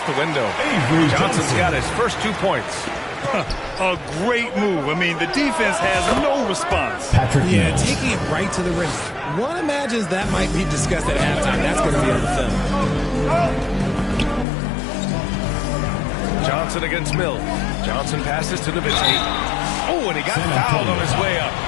the window. Avery Johnson's got his first 2 points. A great move. I mean, the defense has no response. Patrick Yeah, Mills. taking it right to the rim. One imagines that might be discussed at halftime. That's going to be on the film. Johnson against Mills. Johnson passes to Nowitzki. Oh, and he got fouled on his way up.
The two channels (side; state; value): right; drops out; at 14.5 s